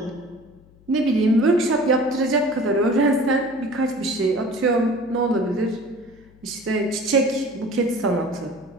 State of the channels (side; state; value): left; noise; hum, 27 dB below the sound